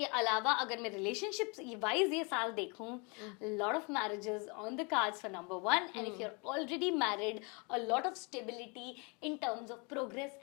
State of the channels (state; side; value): quieter; right; 31.7 dB